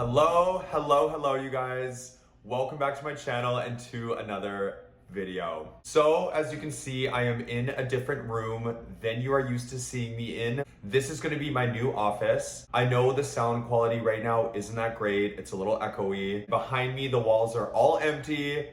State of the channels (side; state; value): both; identical; correlation 1.00